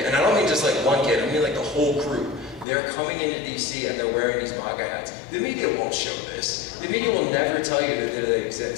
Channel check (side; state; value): right; drops out; at 2.7 s